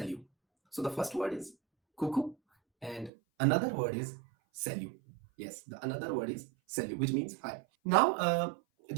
So the first word is coucou and another word is salut. Yes, the another word is salut, which means hi. Now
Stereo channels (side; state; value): left; drops out; at 3.1 s